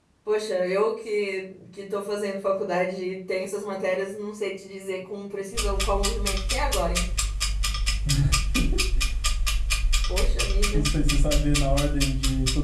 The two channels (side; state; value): both; identical; correlation 1.00